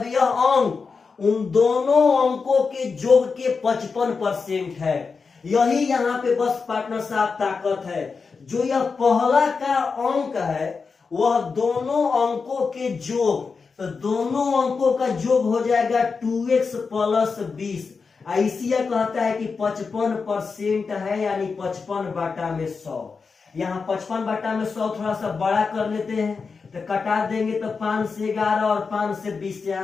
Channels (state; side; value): quieter; right; 4.9 dB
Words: यह अंक उन दोनों अंकों के योग के 55% है। यही यहाँ पे बस पार्टनर साहब ताकत है। जो यह पहला का अंक है वह दोनों अंकों के योग, तो दोनों अंकों का योग हो जाएगा 2x प्लस 20। ऐसिया कहता है कि 55% है, यानी 55/100। यहाँ 55/100 थोड़ा सा बड़ा कर लेते हैं तो कटा देंगे तो 5 से 11 और 5 से 20,